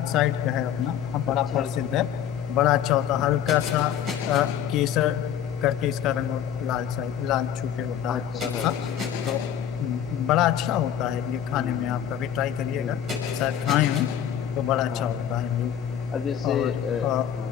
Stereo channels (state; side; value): quieter; right; 9.7 dB